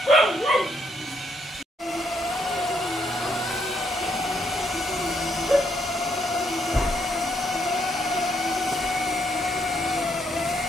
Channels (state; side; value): normal; both; correlation 0.73